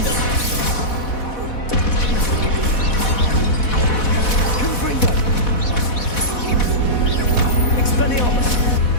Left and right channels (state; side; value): late; right; 4.1 ms